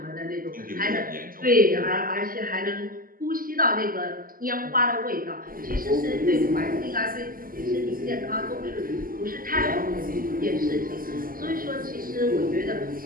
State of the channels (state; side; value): late; left; 0.41 ms